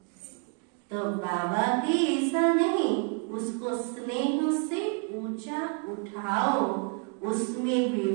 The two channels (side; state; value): left; quieter; 37.5 dB